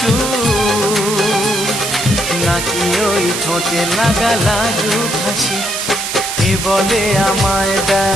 নাকি ওই ঠোঁটে লাগা লাজুক হাসি এ বলে আমায়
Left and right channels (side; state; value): right; noise; hiss, 4 dB below the sound